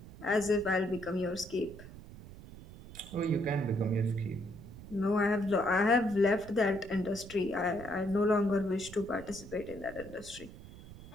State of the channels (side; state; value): right; noise; rumble, 16 dB below the sound